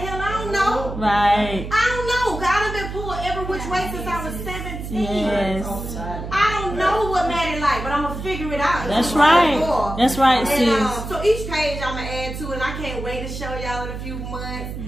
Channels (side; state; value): right; noise; hum, 7 dB below the sound